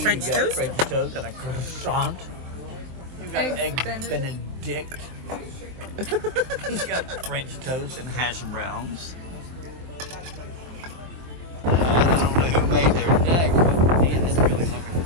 French toast? French toast and a croissant. You got eggs Benedict. You got French toast and hash browns. I don't know who made their deck, but man, it's really looking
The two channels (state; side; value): late; left; 23 ms